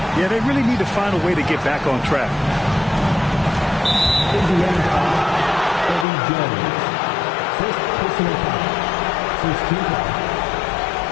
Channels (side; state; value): right; drops out; at 6.1 s